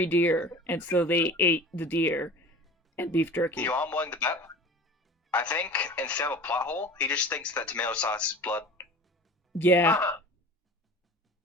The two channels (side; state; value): both; normal; correlation 0.39